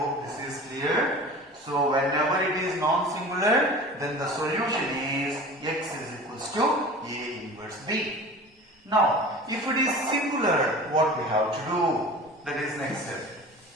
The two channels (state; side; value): normal; both; correlation 0.38